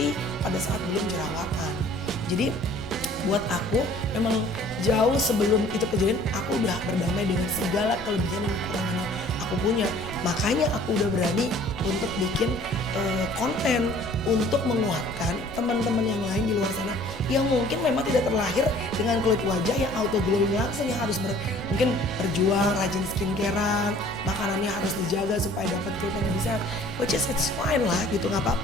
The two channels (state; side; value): noise; left; rumble, 20 dB below the sound